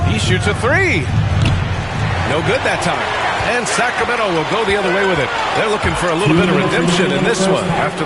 He shoots a three. No good that time. And Sacramento will go the other way with it. They're looking for a little bit of redemption in this one after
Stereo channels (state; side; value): identical; both; correlation 1.00